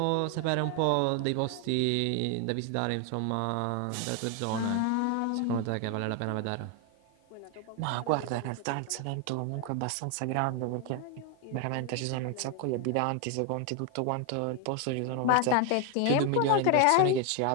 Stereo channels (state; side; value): different; both; correlation 0.01